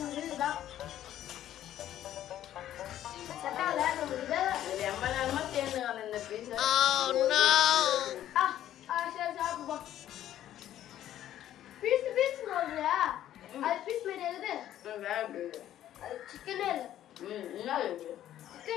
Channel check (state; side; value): quieter; right; 12.1 dB